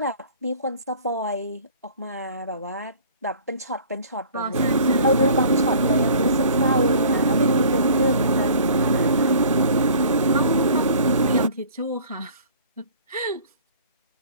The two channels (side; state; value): both; inverted; correlation -0.48